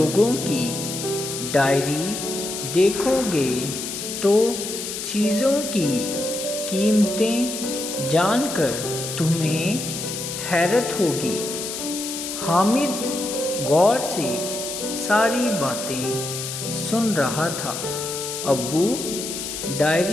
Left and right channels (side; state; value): left; noise; hiss, 6 dB below the sound